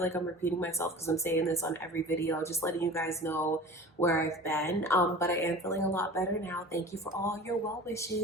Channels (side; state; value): both; normal; correlation 0.39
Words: like I'm repeating myself because I'm saying this on every video, just letting you guys know where I've been. But I am feeling a lot better now. Thank you for all your well